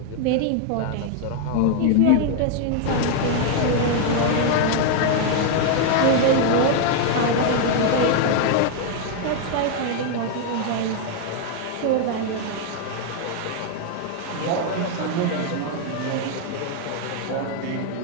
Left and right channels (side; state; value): both; different; correlation 0.00